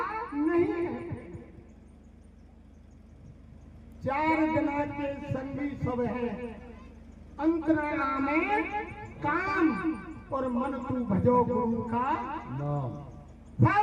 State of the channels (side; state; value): both; identical; correlation 1.00